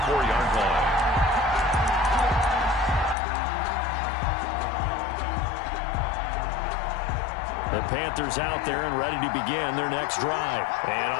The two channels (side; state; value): right; drops out; at 3.2 s